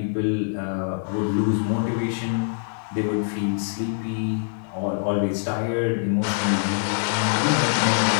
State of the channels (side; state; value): right; silent; digital silence